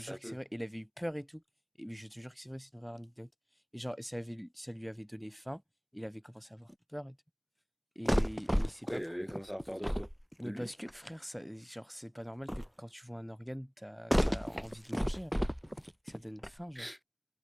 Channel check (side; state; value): both; identical; correlation 1.00